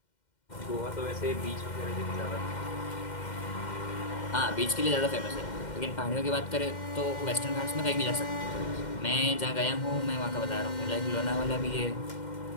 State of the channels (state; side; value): late; right; 2.1 ms